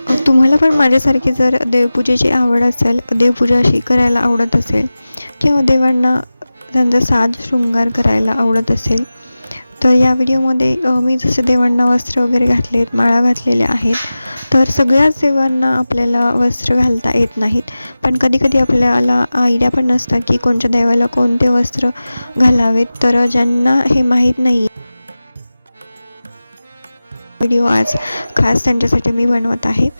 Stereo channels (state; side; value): inverted; both; correlation -0.96